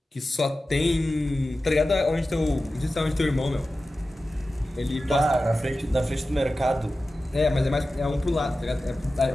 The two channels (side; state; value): both; normal; correlation 0.94